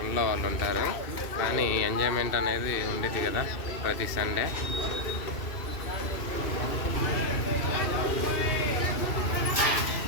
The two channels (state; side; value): late; right; 2.7 ms